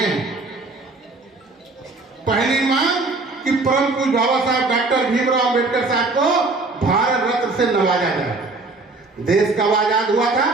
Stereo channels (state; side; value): quieter; left; 3.4 dB